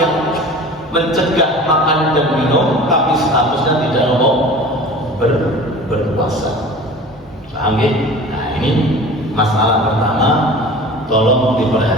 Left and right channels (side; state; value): both; normal; correlation 0.39